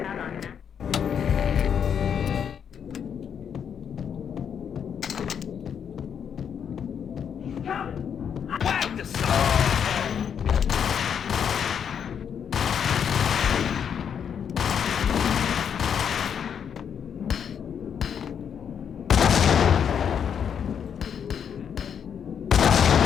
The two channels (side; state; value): right; quieter; 7.8 dB